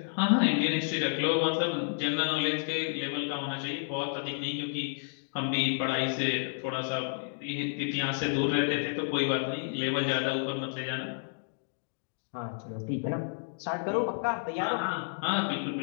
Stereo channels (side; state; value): right; silent; digital silence